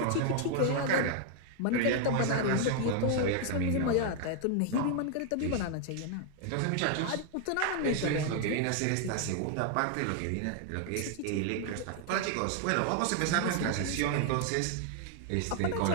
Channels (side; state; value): both; different; correlation 0.00